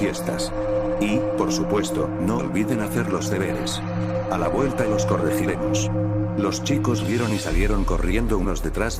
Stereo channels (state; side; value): identical; both; correlation 1.00